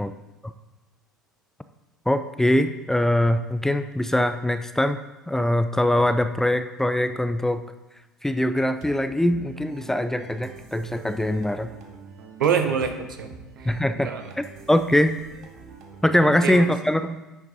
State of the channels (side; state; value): both; normal; correlation 0.87